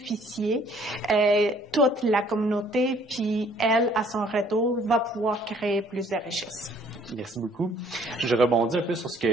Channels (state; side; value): normal; both; correlation 0.59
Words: toute la communauté, puis elle, à son retour, va pouvoir créer plus de richesses. Merci beaucoup. Je rebondis un peu sur ce